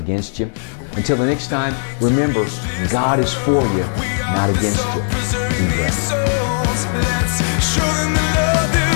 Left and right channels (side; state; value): right; silent; 68 dB below the other